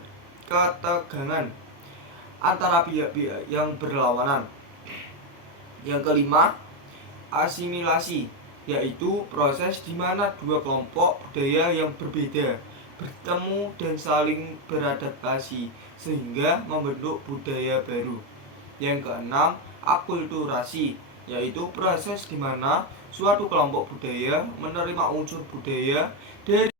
antara pihak-pihak yang berlawanan. Yang kelima, asimilasi, yaitu proses di mana dua kelompok budaya yang berbeda bertemu dan saling beradaptasi sehingga membentuk budaya baru. Yang keenam, akulturasi, yaitu proses di mana suatu kelompok budaya menerima unsur budaya dari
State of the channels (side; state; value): left; late; 29 ms